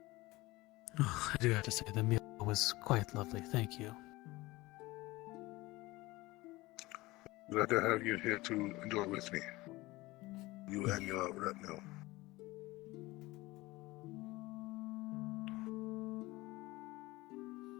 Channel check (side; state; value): right; quieter; 20.3 dB